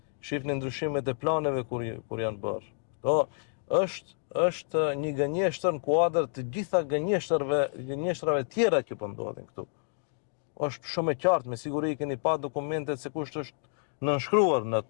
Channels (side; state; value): right; silent; 58 dB below the other